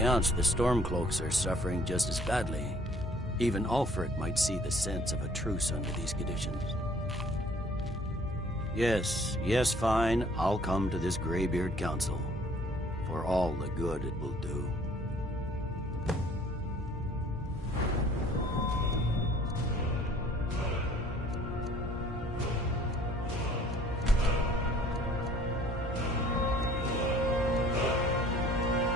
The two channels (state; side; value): normal; both; correlation 0.56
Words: the Stormcloaks are suffering just as badly. Even Ulfric might see the sense of a truce under these conditions. Yes, fine. I'll come to this Greybeard Council. For all the good it will do.